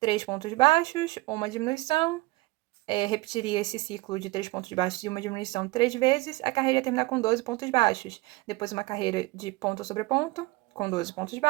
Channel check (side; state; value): left; quieter; 22.1 dB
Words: pontos baixos, uma diminuição, repetiria esse ciclo de 3 pontos baixos e uma diminuição 3 vezes, a carreira ia terminar com 12 pontos baixos. Depois uma carreira de ponto sobre ponto, com 12 pontos